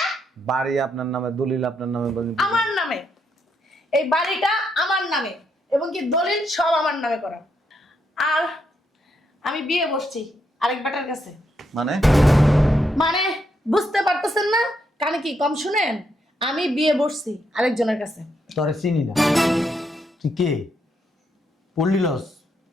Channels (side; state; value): both; normal; correlation 0.78